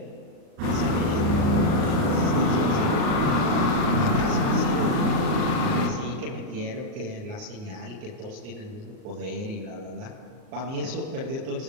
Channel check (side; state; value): left; late; 38 ms